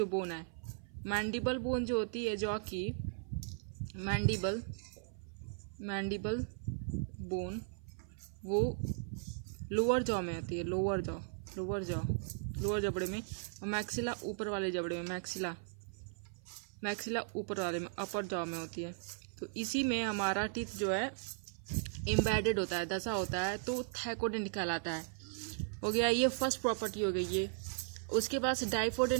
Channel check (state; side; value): silent; left; 53 dB below the other